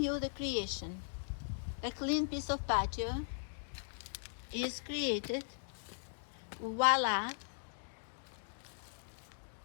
you the creation. A clean piece of patio is created. Voila.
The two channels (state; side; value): silent; right; digital silence